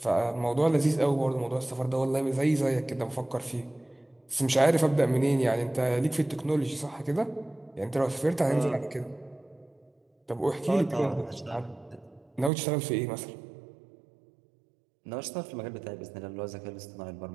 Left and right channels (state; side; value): drops out; left; at 12.5 s